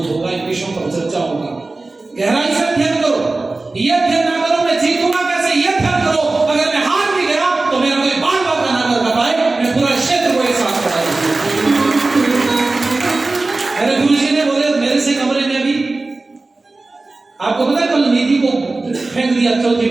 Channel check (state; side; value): quieter; left; 3.3 dB